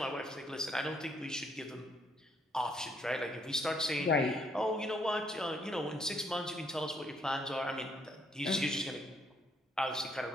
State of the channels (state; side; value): normal; both; correlation 0.70